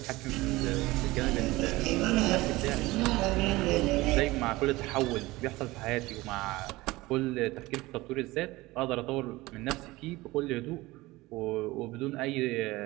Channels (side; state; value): left; quieter; 19.9 dB